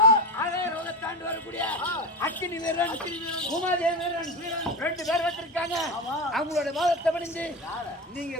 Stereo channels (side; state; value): both; normal; correlation 0.21